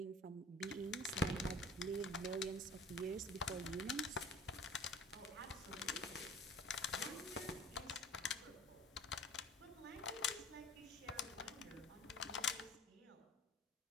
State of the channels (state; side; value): normal; both; correlation 0.45